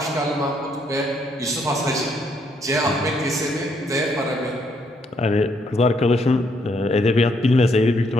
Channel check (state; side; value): normal; both; correlation 0.72